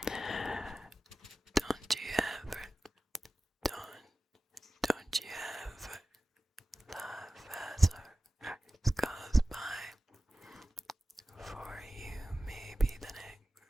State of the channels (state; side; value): normal; both; correlation 0.95